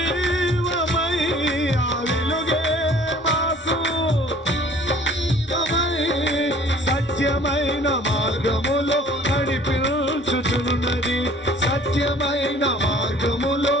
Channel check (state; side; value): normal; both; correlation 0.53